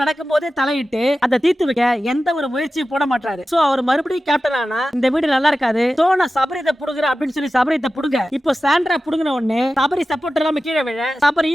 நடக்கும் போதே தலையிட்டு அதை தீர்த்து வைக்க எந்த ஒரு முயற்சியும் போட மாட்டாரு. சோ அவர் மறுபடியும் கேப்டன் ஆனா இந்த வீடு நல்லா இருக்காது. சோ நான் சபரியத்தை புடுங்குறேன் அப்படின்னு சொல்லி சபரியத்தை புடுங்க. இப்போ சாண்ட்ரா புடுங்கின உடனே சபரி சப்போர்ட் இல்லாம கீழே விழ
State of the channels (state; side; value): normal; both; correlation 0.94